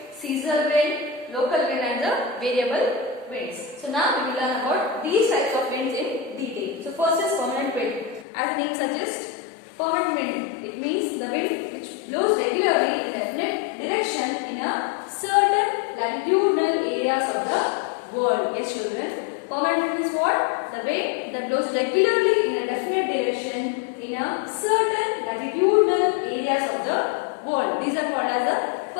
seasonal wind, local wind and the variable winds. So now we will learn about these types of winds in detail. So first is permanent wind. As the name suggests, permanent wind, it means the wind which blows regularly in a definite direction in a certain latitudinal areas of the world. Yes, children. Permanent wind is what? The wind that blows regularly in a definite direction in a certain latitudinal areas of the world. These are called as the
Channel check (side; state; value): right; drops out; at 8.2 s